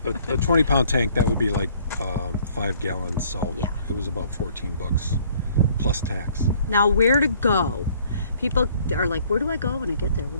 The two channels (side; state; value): both; inverted; correlation -0.59